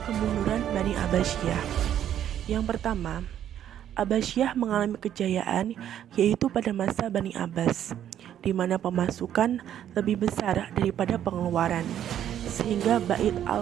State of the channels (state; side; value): quieter; left; 10.5 dB